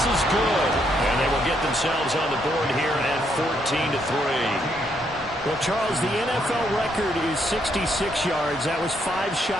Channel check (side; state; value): both; normal; correlation 0.74